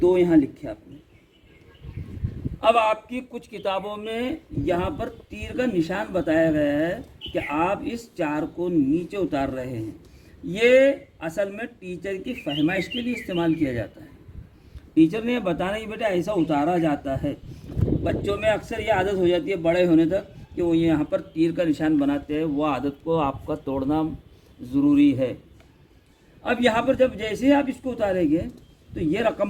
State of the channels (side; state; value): both; identical; correlation 1.00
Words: यहाँ लिखे आपने। अब आपकी कुछ किताबों में यहाँ पर तीर का निशान बताया गया है कि आप इस 4 को नीचे उतार रहे हैं। ये असल में टीचर की फहमाइश के लिए इस्तेमाल किया जाता है। टीचर ने ये बताना कि बेटा ऐसा उतारा जाता है। बच्चों में अक्सर ये आदत हो जाती है बड़े होने तक कि वो यहाँ पर तीर का निशान बनाते हैं, वो आदत को आपका तोड़ना ज़रूरी है। अब यहाँ पर जब जैसे ही आप इसको उतारेंगे तो ये